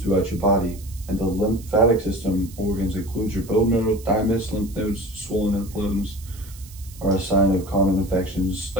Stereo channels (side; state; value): right; noise; hiss, 20 dB below the sound